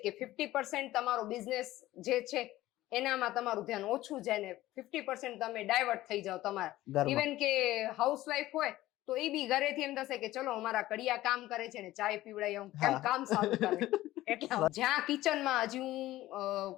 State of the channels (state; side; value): quieter; right; 16.0 dB